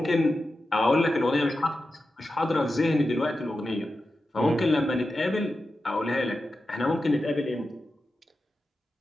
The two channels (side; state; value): both; normal; correlation 0.91